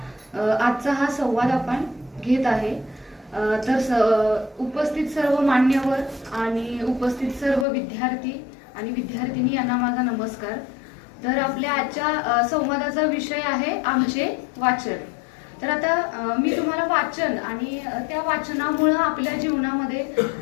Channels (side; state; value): right; drops out; at 7.7 s